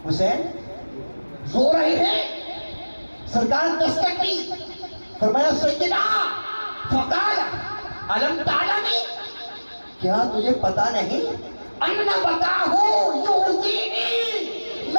حسین رو رہے ہیں۔ سرکار دستک دی، فرمایا سیدنا، فقال الم تعلمی، کیا تجھے پتا نہیں ان بقاہ یؤذینی،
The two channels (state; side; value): inverted; both; correlation -1.00